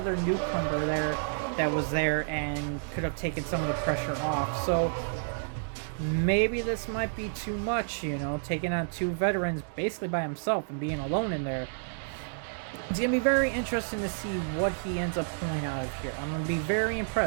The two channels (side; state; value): left; silent; digital silence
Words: newcomer there that was there and could have taken some of the pressure off. So maybe this might be too much, taking on two veterans basically by himself and being alone in there. It's going to be very interesting to see what he ends up pulling out of here. I'm going to be very